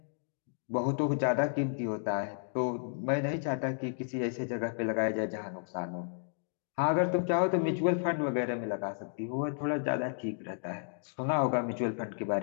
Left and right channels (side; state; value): right; silent; digital silence